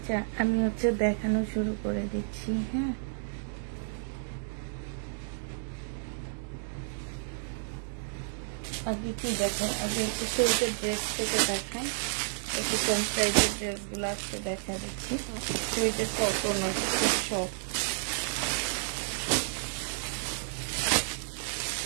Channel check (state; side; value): silent; left; digital silence